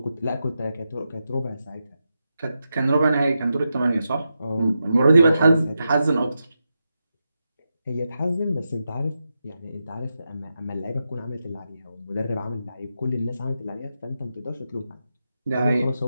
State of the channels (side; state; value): both; inverted; correlation -0.88